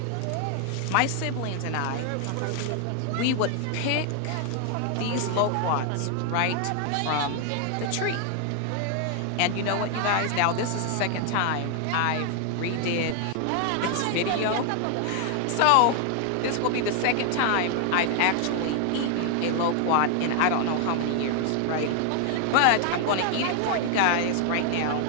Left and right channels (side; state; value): both; different; correlation 0.00